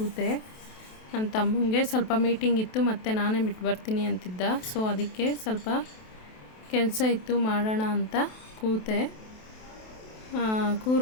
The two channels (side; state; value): right; late; 28 ms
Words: ನನ್ನ ತಮ್ಮಂಗೆ ಸ್ವಲ್ಪ ಮೀಟಿಂಗ್ ಇತ್ತು ಮತ್ತು ನಾನೇ ಬಿಟ್ಟು ಬರ್ತೀನಿ ಅಂತಿದ್ದ. ಸೊ ಅದಕ್ಕೆ ಸ್ವಲ್ಪ ಕೆಲಸ ಇತ್ತು ಮಾಡೋಣ ಅಂತ ಕೂತೆ.